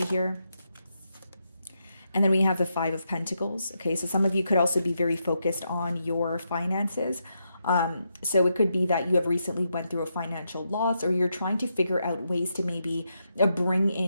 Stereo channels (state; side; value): inverted; both; correlation -0.82